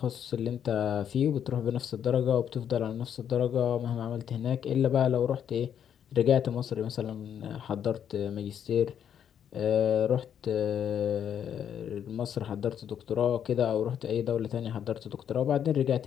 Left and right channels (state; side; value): quieter; right; 8.9 dB